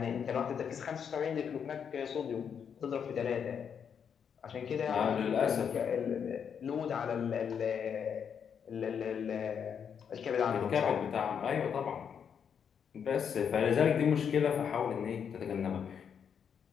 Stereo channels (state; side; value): quieter; right; 7.4 dB